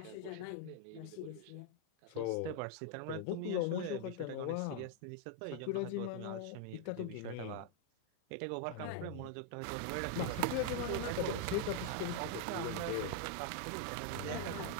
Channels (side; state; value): both; different; correlation 0.00